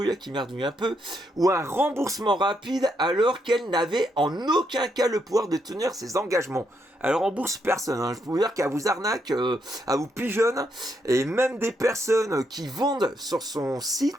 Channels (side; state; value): both; normal; correlation 0.78